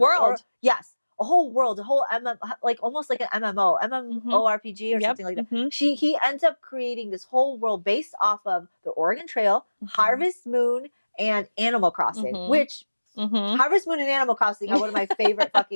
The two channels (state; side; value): inverted; both; correlation -1.00